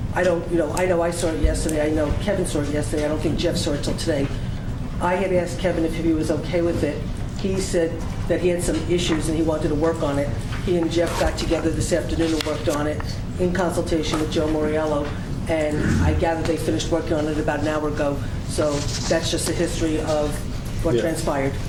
I know I saw it yesterday. I know Kevin saw it yesterday. I don't think Jeff saw it till today. I had asked Kevin if he was okay with it. He said that he had some issues and he wanted to work on it. He and Jeff got together this afternoon and worked on it in consultation with Joe Moriello, and I gather they finished working on it about an hour ago. So that's just a history of what Yeah. transpired.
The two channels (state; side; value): identical; both; correlation 1.00